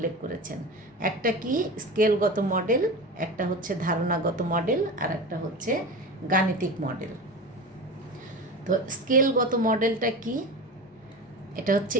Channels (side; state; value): both; normal; correlation 0.29